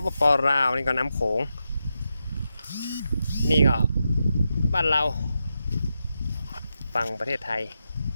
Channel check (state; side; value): inverted; both; correlation -0.87